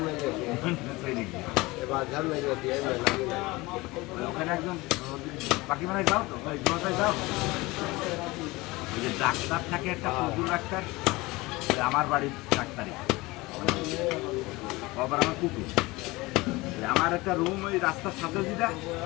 ওখানে একদম বাকি মানে যাও তো যাও ওই যে ডাক্তার থাকে একটা কুকুর ডাক্তার আমার বাড়ির ডাক্তারই আবার আমার কুকুর আমার একটা রুম ওই রাস্তার সাথে যেটা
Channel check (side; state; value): right; quieter; 21.8 dB